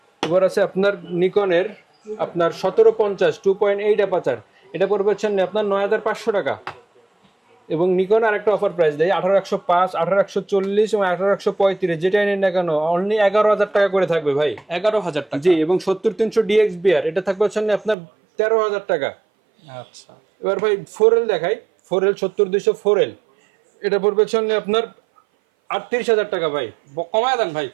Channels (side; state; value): left; drops out; at 17.9 s